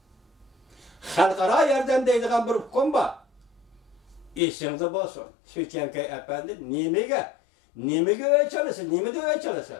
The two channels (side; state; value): right; drops out; at 4.4 s